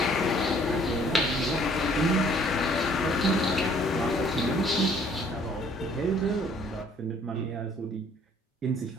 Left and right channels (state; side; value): normal; both; correlation 0.59